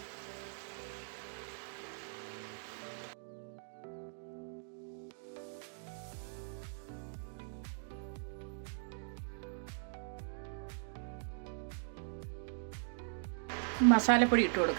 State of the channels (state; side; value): silent; left; digital silence